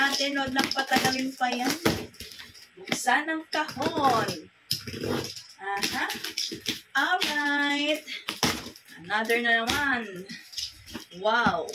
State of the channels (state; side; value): identical; both; correlation 1.00